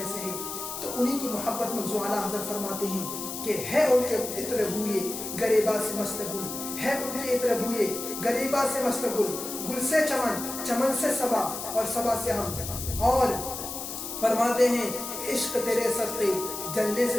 سے ہے، تو انہی کی محبت میں حضور اعلیٰ حضرت فرماتے ہیں کہ ہے ان کے عطر بوئے گریباں سے مست گل، ہے ان کے عطر بوئے گریباں سے مست گل، گل سے چمن، چمن سے صبا اور صبا سے ہم، اور فرماتے ہیں عشق تیرے صدقے جلنے سے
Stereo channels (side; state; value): left; noise; hiss, 7 dB below the sound